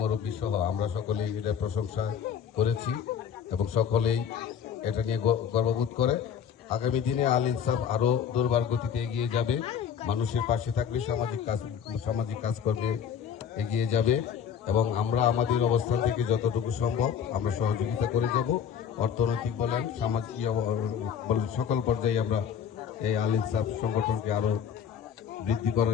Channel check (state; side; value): quieter; right; 8.0 dB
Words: মুরব্বী সহ আমরা সকলেই এটা প্রশংসা করেছি এবং সকলেই এটা নিয়ে গর্ববোধ করে। আগামী দিনে আল ইনসাফ আরো দুর্বার গতিতে এগিয়ে যাবে, মানুষের পাশে থাকবে, সামাজিক কাজকর্মে এগিয়ে যাবে এবং আমরা আমাদের অবস্থান থেকে যতটুকু সম্ভব আমরা সহযোগিতা করে যাব। অর্থনৈতিক বলেন, সামাজিক বলেন, সকল পর্যায়ে আমরা এই আল ইনসাফ সংগঠনকে আরো বৃদ্ধি